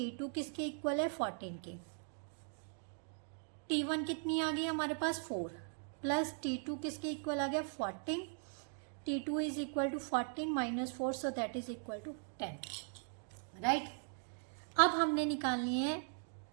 किसके इक्वल है 14 के। T1 कितनी आ गई हमारे पास 4, प्लस T2 किसके इक्वल आ गया 14, T2 is equal to 14 minus 4, so that is equal to 10, right. अब हमने निकालनी है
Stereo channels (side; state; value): left; silent; 51 dB below the other